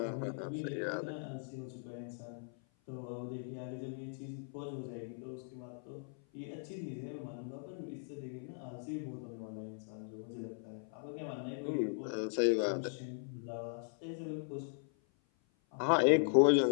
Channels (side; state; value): right; silent; 52 dB below the other